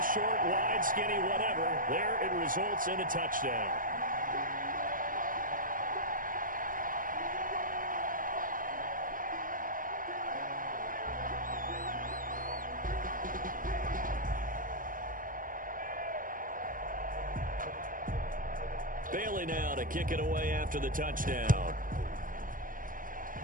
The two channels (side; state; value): left; late; 0.40 ms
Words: short, wide, skinny, whatever. There it results in a touchdown. Bailey now to kick it away after the touchdown.